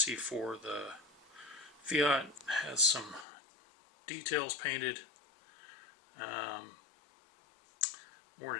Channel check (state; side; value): drops out; right; at 3.2 s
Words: for the Fiat has some details painted. More